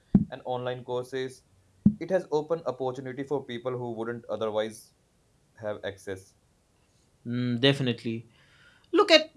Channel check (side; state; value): both; identical; correlation 1.00